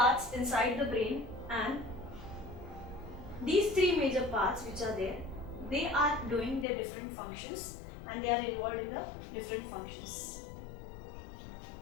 inside the brain, and these three major parts which are there, they are doing their different functions and they are involved in the different functions.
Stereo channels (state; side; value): drops out; right; at 6.7 s